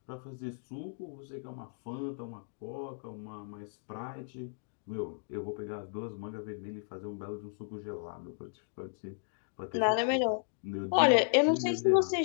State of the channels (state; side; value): silent; right; digital silence